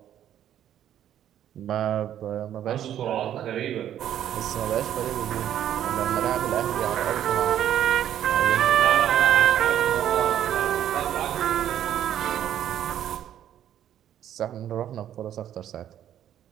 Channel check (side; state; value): left; quieter; 10.8 dB